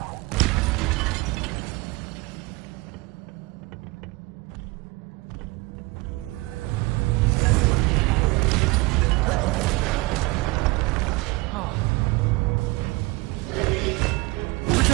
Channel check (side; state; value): left; quieter; 23.0 dB